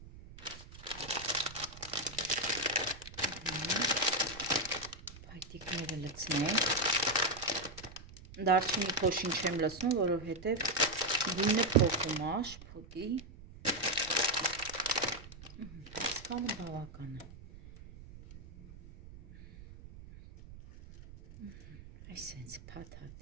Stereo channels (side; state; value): right; noise; rumble, 17 dB below the sound